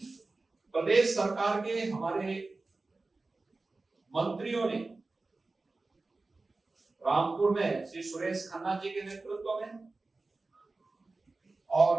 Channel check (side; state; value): left; quieter; 3.5 dB